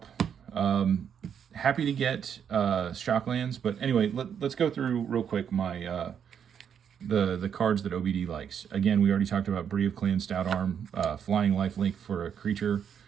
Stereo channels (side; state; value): left; quieter; 8.0 dB